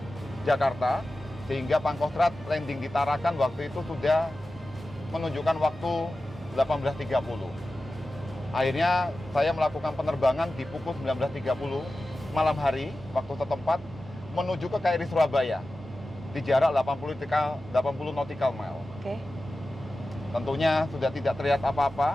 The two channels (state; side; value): noise; right; hum, 21 dB below the sound